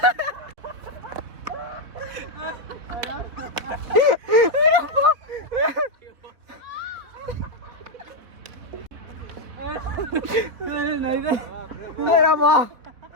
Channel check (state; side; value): late; left; 3.9 ms